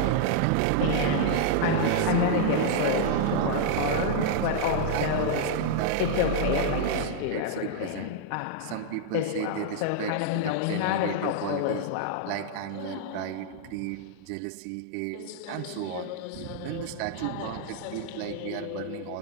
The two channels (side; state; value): both; different; correlation -0.01